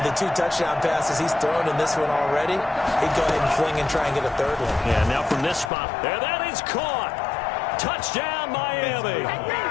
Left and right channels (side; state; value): right; drops out; at 5.7 s